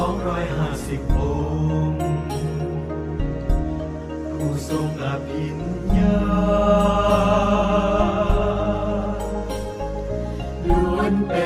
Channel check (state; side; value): identical; both; correlation 1.00